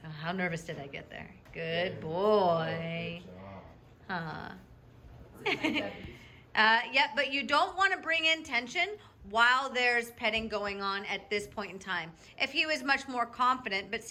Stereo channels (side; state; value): both; identical; correlation 1.00